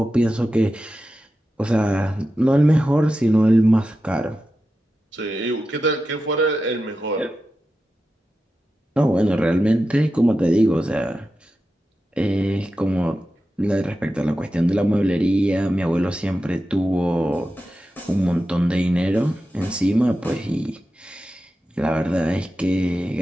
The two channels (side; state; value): both; normal; correlation 0.91